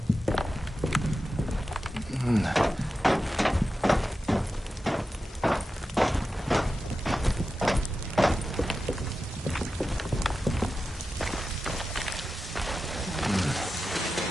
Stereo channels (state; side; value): normal; both; correlation 0.92